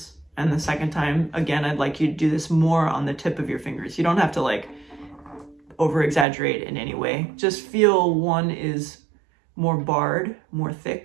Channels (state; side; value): drops out; left; at 6.2 s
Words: And the second time, again, I'd like you to do this more on the tip of your fingers. You don't have to like over exaggerate in any way. Just feel one is more barred, more